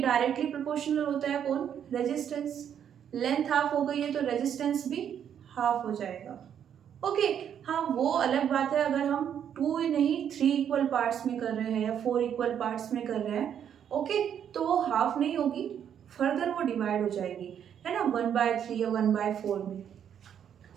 प्रोपोर्शनल होता है कौन, रेजिस्टेंस, लेंथ हाफ हो गई है तो रेजिस्टेंस भी हाफ हो जाएगा। ओके, हाँ वो अलग बात है अगर हम 2 नहीं 3 इक्वल पार्ट्स में कर रहे हैं या 4 इक्वल पार्ट्स में कर रहे हैं, ओके, तो वो हाफ नहीं होगी, फर्दर वो डिवाइड हो जाएगी, है ना, 1/3 या 1/4 में।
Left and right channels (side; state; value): left; quieter; 8.9 dB